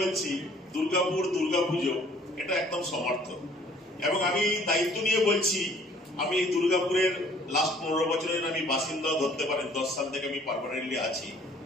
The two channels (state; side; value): normal; both; correlation 0.57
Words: দুর্গাপুর দুর্গাপুজো এটা একদম সমর্থক। এবং আমি দায়িত্ব নিয়ে বলছি, আমি দুর্গাপুরের লাস্ট 15 বছরের আমি বাসিন্দা ধরতে পারেন, 10 সাল থেকে আমি পার্মানেন্টলি আছি।